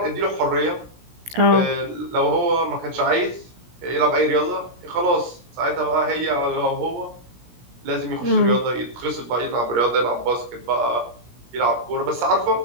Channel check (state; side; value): late; left; 17 ms